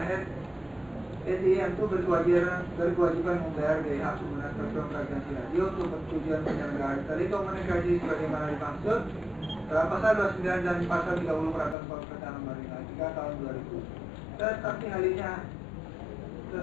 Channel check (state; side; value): drops out; right; at 11.8 s